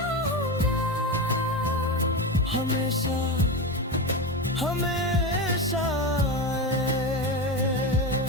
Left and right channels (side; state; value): both; normal; correlation 0.18